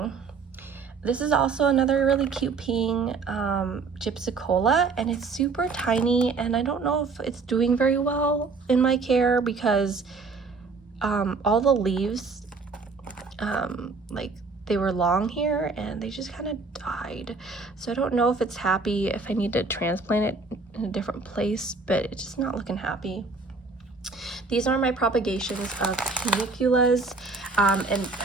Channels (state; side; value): quieter; left; 4.2 dB